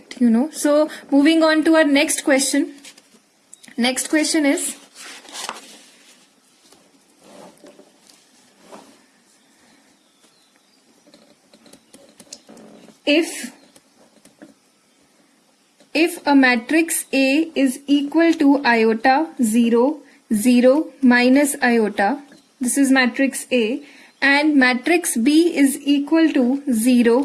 you know. So moving on to our next question. Next question is if a matrix A is equal to iota 0 0 minus iota, this is matrix A, and matrix B is equal to 0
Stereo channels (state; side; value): identical; both; correlation 1.00